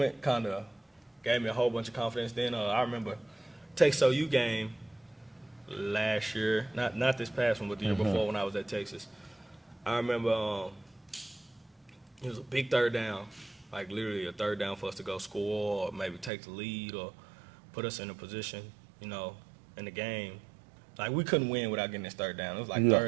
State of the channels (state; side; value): drops out; left; at 16.3 s